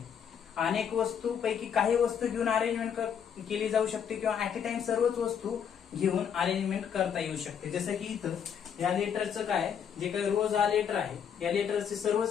अनेक वस्तू पैकी काही वस्तू घेऊन अरेंजमेंट केली जाऊ शकते किंवा ऍट ए टाइम सर्वच वस्तू घेऊन अरेंजमेंट करता येऊ शकते. जसं की इथं या लेटरचं काय, जे काही रोज हा लेटर आहे, या लेटरचे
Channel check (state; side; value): quieter; right; 7.9 dB